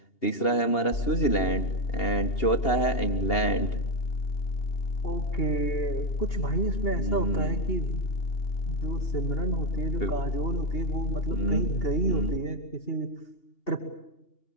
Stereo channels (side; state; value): right; late; 2.8 ms